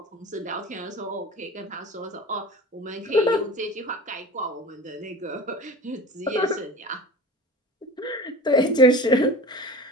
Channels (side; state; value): both; normal; correlation 0.36